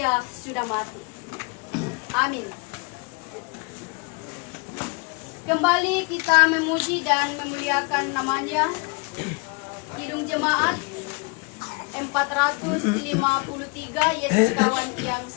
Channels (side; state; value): right; quieter; 31.5 dB